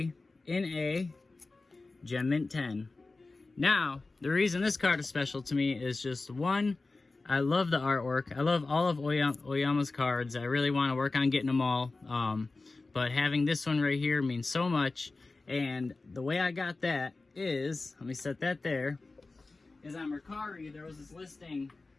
in a Gem Mint 10. Now, the reason this card is special to me is just one, I love the artwork. I love all of Oyama's cards. I really want to work on getting them all. But having this one right here means so much. And the way I got that is, let me set that there, is on Mercari, there was this listing,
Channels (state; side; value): quieter; right; 3.5 dB